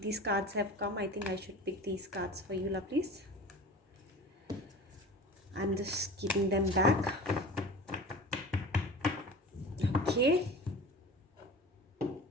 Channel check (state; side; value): normal; both; correlation 0.36